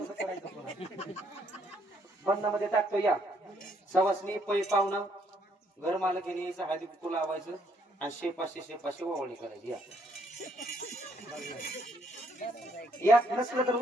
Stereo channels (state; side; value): normal; both; correlation 0.69